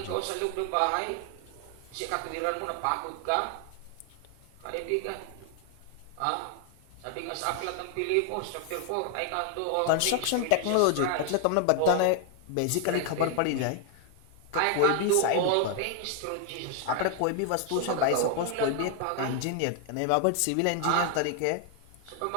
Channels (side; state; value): both; different; correlation 0.00